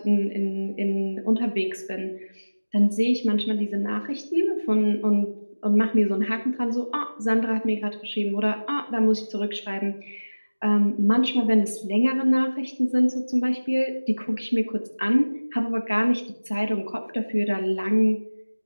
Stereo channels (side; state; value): both; inverted; correlation -1.00